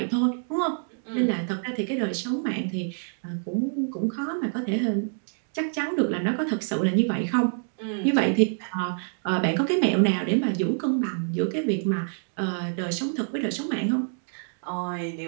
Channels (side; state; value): left; silent; digital silence